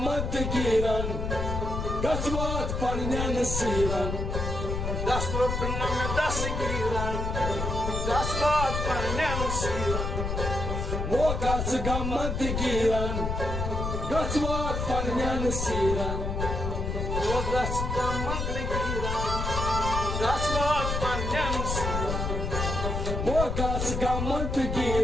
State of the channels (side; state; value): left; noise; rumble, 2 dB below the sound